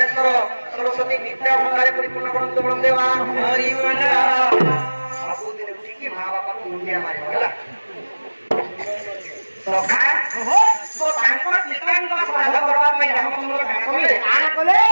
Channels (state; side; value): inverted; both; correlation -1.00